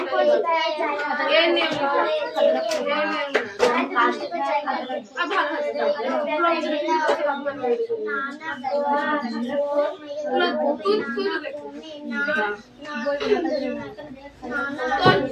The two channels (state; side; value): identical; both; correlation 1.00